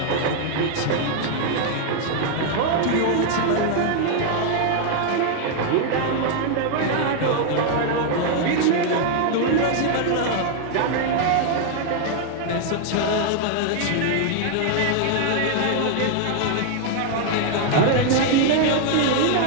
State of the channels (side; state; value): both; different; correlation 0.00